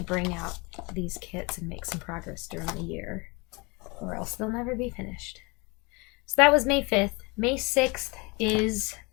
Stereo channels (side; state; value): right; quieter; 27.7 dB